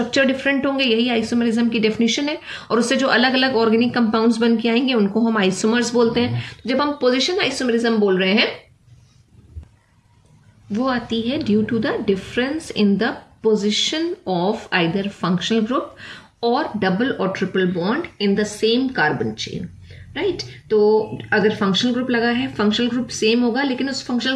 डिफरेंट होंगे, यही आइसोमेरिज्म की डेफिनेशन है। और उससे जो अलग अलग ऑर्गेनिक कंपाउंड्स बन के आएंगे उनको हम आइसोमर्स बोलते हैं। जब हम पोजीशन आइसोमेरिज्म बोल रहे हैं वो आती है due to the difference in the position of either functional group और डबल और triple bond in the same carbon chain, right. तो अगर फंक्शनल ग्रुप लगा है, फंक्शनल ग्रुप सेम होगा लेकिन उस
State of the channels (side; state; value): both; identical; correlation 1.00